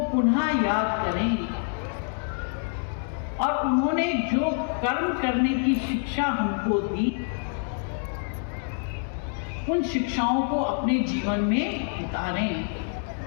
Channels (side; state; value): right; silent; 60 dB below the other